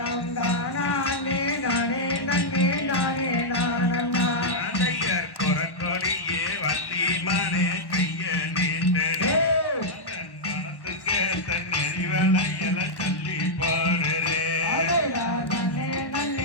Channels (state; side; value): late; right; 1.1 ms